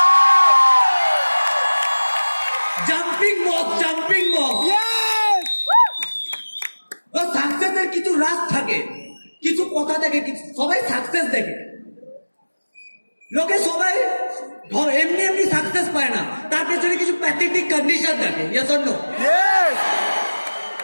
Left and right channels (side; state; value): both; inverted; correlation -1.00